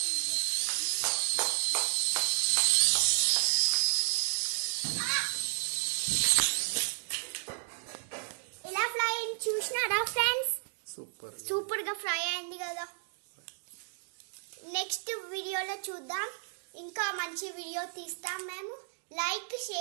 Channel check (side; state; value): left; silent; digital silence